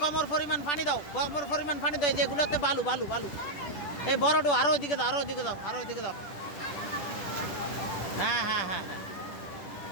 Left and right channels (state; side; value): late; right; 10 ms